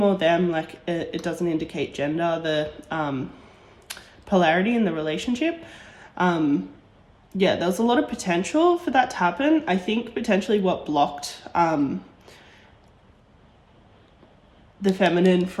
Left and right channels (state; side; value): identical; both; correlation 1.00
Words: or them. Like it doesn't indicate gender, the polarity in the relationship. Yeah, there was a lot of potential for that to happen. I think potentially what blocked the feminine